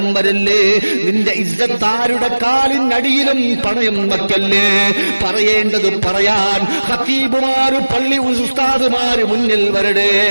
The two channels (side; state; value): both; inverted; correlation -1.00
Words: വരല്ലേ. നിന്റെ താരുടെ കാലിനടിയിലും പണയം വയ്ക്കല്ലേ. പറയേണ്ടത് പറയാൻ ഖത്തീബുമാര്, പള്ളി ഉസ്താദുമാര് മുന്നിൽ വരടേ.